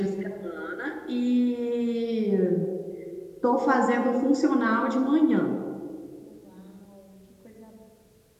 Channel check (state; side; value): identical; both; correlation 1.00